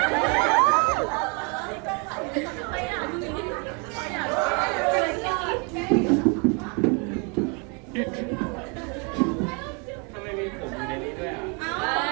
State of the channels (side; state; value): left; quieter; 33.8 dB